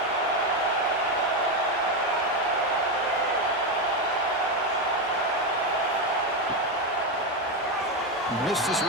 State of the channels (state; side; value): normal; both; correlation 0.10